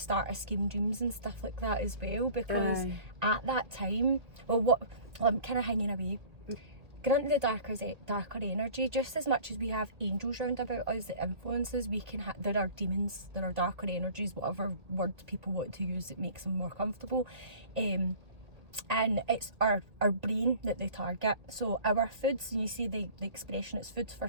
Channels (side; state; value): left; late; 1.9 ms